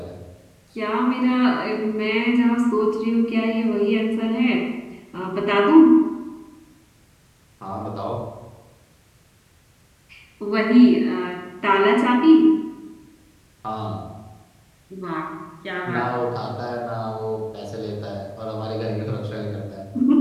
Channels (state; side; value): identical; both; correlation 1.00